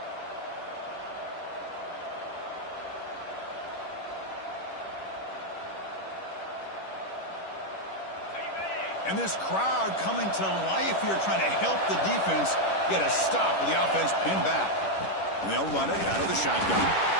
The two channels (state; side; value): late; right; 10 ms